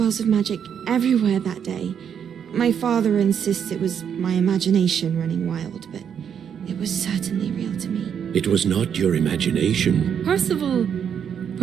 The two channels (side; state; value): left; quieter; 8.0 dB